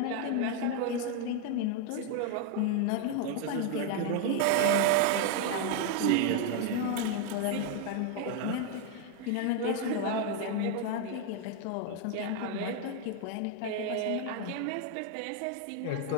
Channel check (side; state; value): both; different; correlation 0.01